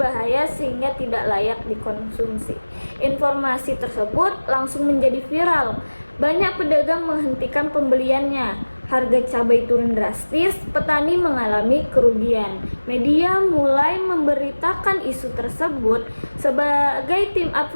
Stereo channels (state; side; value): inverted; both; correlation -1.00